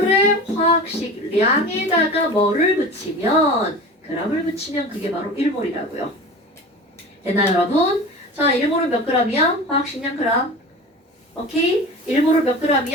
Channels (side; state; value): both; normal; correlation 0.34